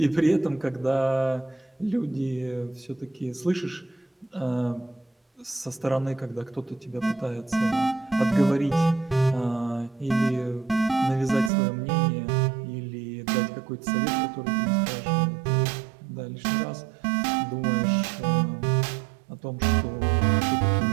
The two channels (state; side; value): drops out; left; at 11.5 s